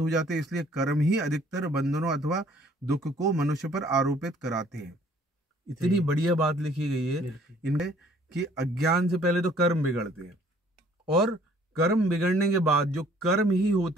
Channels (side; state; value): both; normal; correlation 0.58